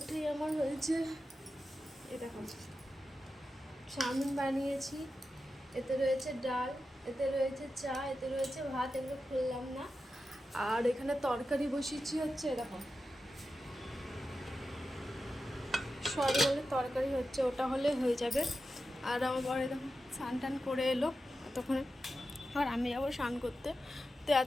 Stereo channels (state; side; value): normal; both; correlation 0.91